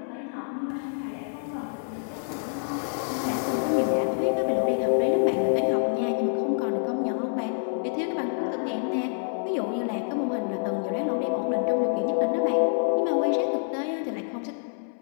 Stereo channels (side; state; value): right; silent; 60 dB below the other